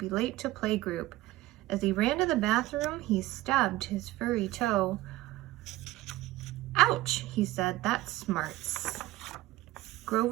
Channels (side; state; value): left; quieter; 17.5 dB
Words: late to playgroup." As he ran to the bathroom, he stubbed his furry toe. "Ouch," he said, "that smarts."